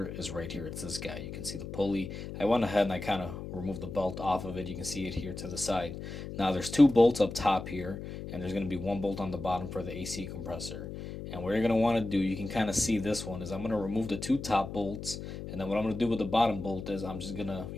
is right here. It's this guy. You can see the pulley. I went ahead and I kind of removed the belt off of it. You can see it here to the side. Now there's 2 bolts up top here, and there's going to be 1 bolt on the bottom for the AC compressor. And what you're going to want to do, you can kind of see this one, is I'm going to remove the 2 top bolts, and then what I'm going to do with the bottom bolt is I'm just going to,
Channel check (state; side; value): noise; left; hum, 8 dB below the sound